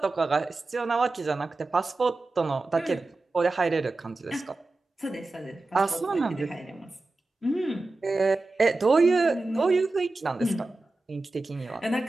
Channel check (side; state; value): left; quieter; 3.2 dB